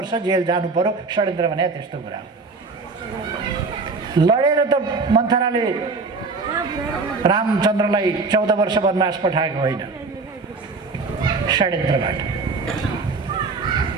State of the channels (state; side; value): quieter; left; 4.1 dB